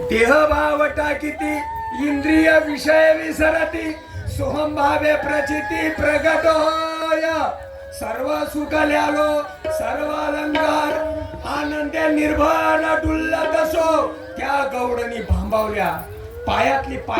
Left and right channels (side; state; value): both; identical; correlation 1.00